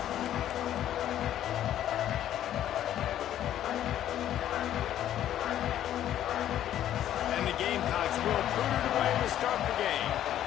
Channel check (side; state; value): right; quieter; 11.6 dB